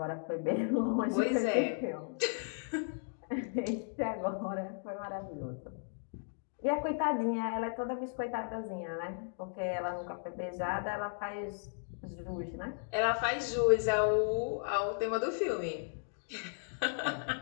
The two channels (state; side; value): silent; right; digital silence